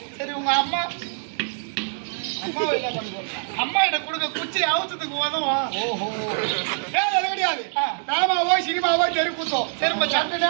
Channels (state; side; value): silent; left; digital silence